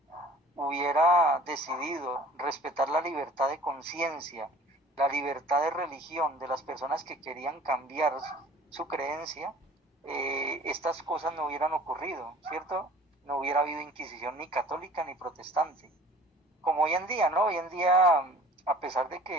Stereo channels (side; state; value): both; normal; correlation 0.48